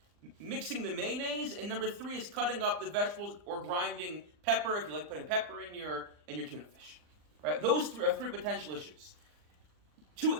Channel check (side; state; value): left; late; 39 ms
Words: mixing the mayonnaise, and number 3 is cutting up the vegetables or grinding pepper, if you like putting pepper in your tuna fish. Right? Those 3 are 3 potential issues.